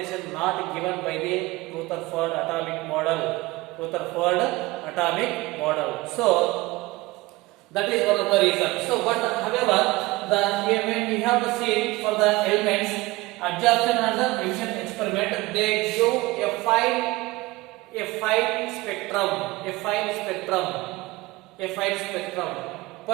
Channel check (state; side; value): quieter; left; 20.7 dB